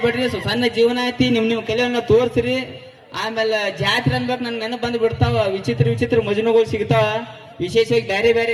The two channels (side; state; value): both; identical; correlation 1.00